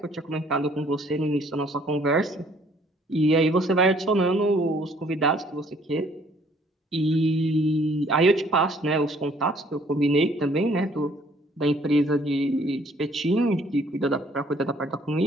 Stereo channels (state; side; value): normal; both; correlation 0.61